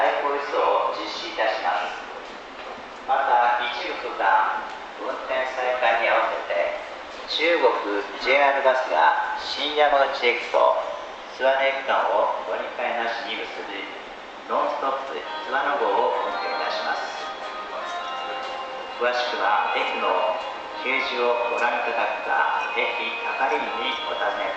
行輸送を実施いたします。また一部区間運転再開に合わせて中国 JR バスが新山口駅と津和野駅間を乗り換えなしに結ぶノンストップ津和野号を運転いたします。詳しくは駅の掲示をご覧いただくか駅係員にお尋ね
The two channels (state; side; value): identical; both; correlation 1.00